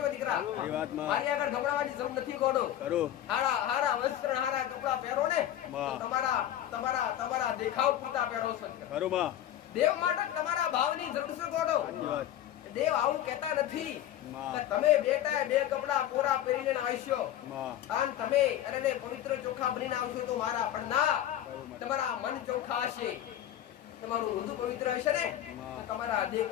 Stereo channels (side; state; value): right; quieter; 11.9 dB